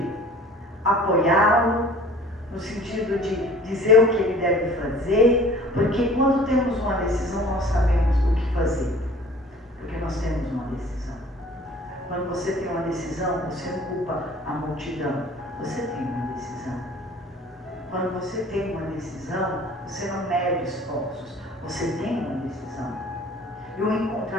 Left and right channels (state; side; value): normal; both; correlation 0.48